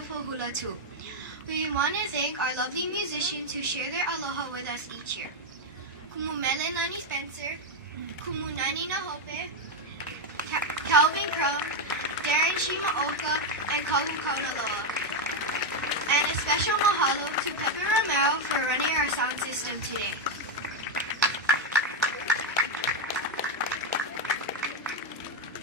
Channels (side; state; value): both; normal; correlation 0.03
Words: hula too. We want to thank our lovely musicians who share their aloha with us each year. Kumu Mele Nani Spencer, Kumu Nani Nahope, Calvin Crum, Darren Shimaoka, and Kalu Kaunaloa. And a special mahalo to Pepe Romero for running our sound system today.